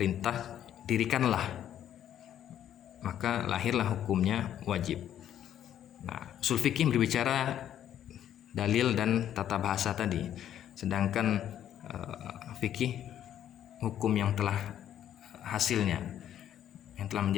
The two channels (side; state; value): right; quieter; 10.7 dB